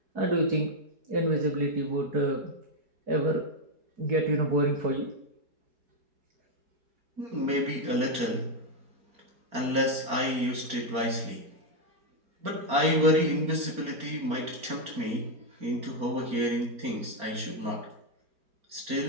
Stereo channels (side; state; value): left; late; 4.4 ms